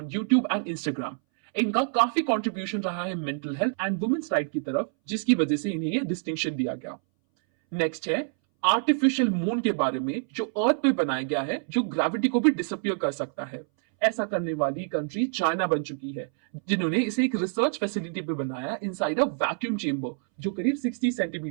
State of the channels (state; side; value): silent; left; 60 dB below the other